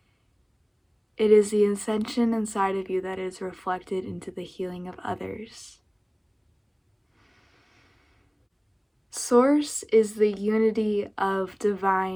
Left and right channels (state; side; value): identical; both; correlation 1.00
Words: It is the ascension inside of you that is reflected into the healing of others. Source is the unity of